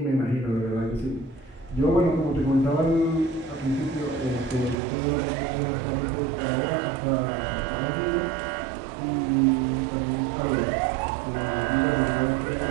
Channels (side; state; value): left; drops out; at 4.8 s